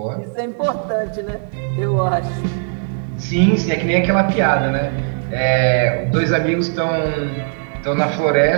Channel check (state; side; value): silent; left; 59 dB below the other